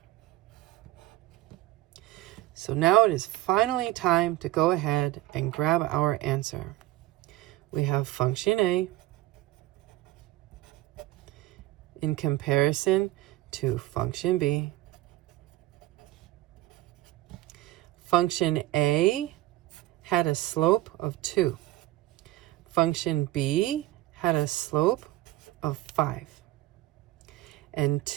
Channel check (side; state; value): left; quieter; 16.8 dB